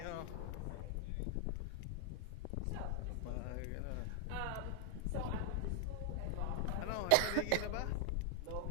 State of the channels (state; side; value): different; both; correlation 0.00